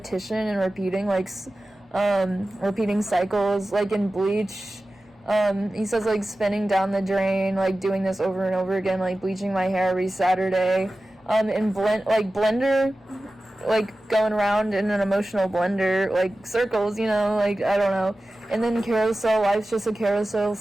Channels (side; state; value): both; normal; correlation 0.95